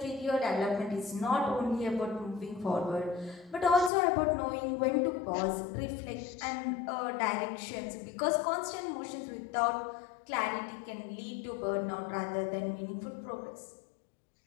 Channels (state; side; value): drops out; right; at 3.9 s